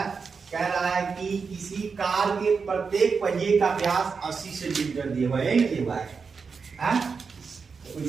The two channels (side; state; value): left; quieter; 5.3 dB